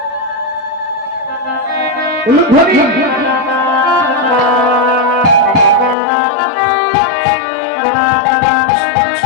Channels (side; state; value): right; drops out; at 6.0 s